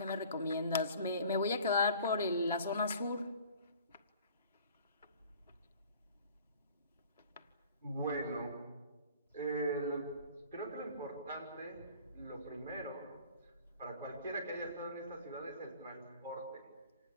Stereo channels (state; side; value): inverted; both; correlation -0.48